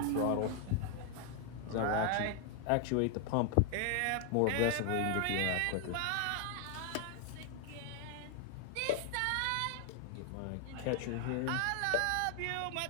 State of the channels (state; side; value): different; both; correlation 0.00